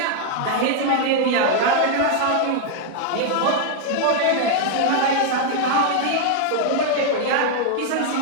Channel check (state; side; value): different; both; correlation 0.00